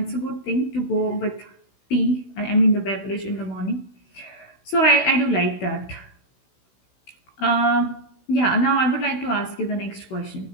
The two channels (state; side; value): late; right; 16 ms